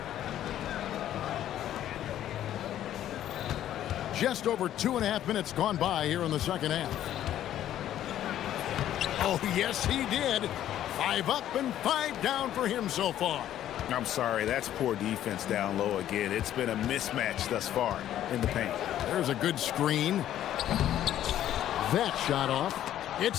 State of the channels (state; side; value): quieter; right; 11.8 dB